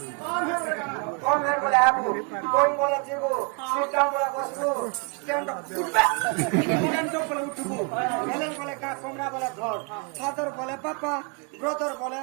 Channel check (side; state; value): left; quieter; 34.2 dB